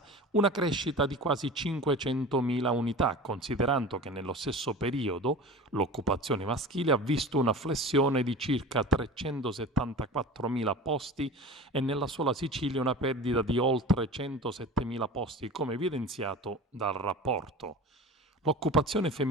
una crescita di quasi 500.000 unità, considerando che nello stesso periodo l'occupazione maschile ha visto una flessione di circa 374.000 posti e nella sola Sicilia una perdita di oltre 107.000 posti, come evidenziato dal rapporto. L'occupazione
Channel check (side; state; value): both; normal; correlation 0.35